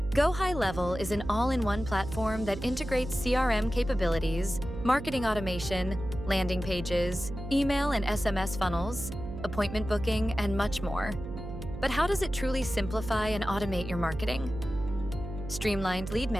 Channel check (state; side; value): noise; right; hum, 9 dB below the sound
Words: Go High Level is an all-in-one platform that integrates CRM capabilities, marketing automation, landing pages, email and SMS funnels, appointment booking, and much more. But how does it truly simplify and automate your marketing? Streamlined Lead